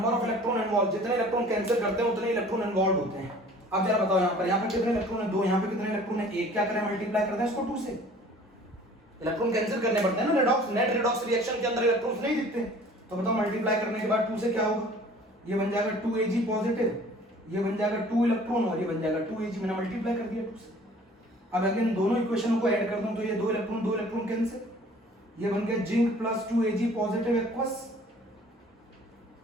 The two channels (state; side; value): normal; both; correlation 0.50